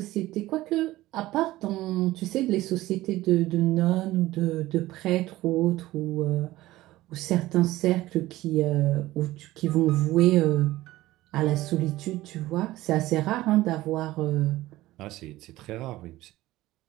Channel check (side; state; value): left; quieter; 17.0 dB